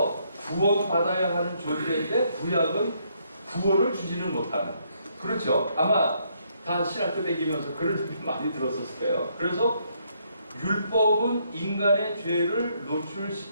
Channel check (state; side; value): inverted; both; correlation -0.72